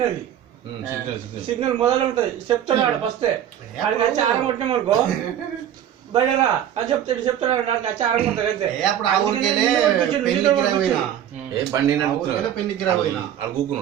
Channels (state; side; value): quieter; left; 10.5 dB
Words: సిగ్నల్ మొదలు ఉంటది చెప్తున్నాడు ఫస్ట్ ఆడికి వచ్చి ఆరం కొట్టినామనుకో బయటరా అని చెప్తాడు ఆడికి వచ్చి ఆరం కొడతాడు అంతే అప్పుడు ఆ ఊరికెళ్ళే పెళ్లికి పోయినా ఏ బండి పెళ్లికి పోయినా